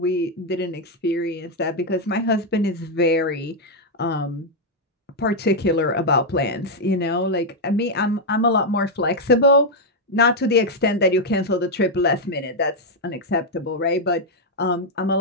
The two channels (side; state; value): both; normal; correlation -0.01